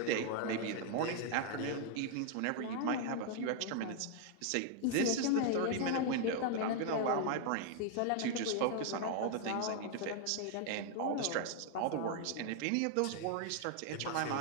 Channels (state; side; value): different; both; correlation 0.00